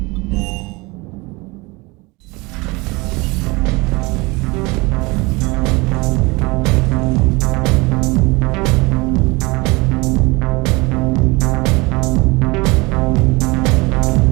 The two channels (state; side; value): quieter; left; 24.7 dB